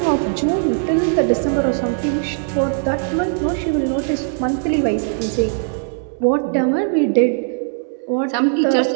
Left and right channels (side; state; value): left; silent; 65 dB below the other